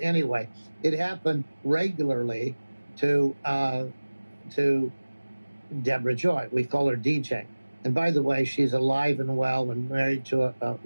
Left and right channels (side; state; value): both; inverted; correlation -1.00